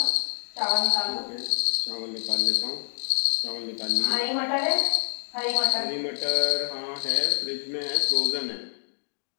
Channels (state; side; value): silent; right; digital silence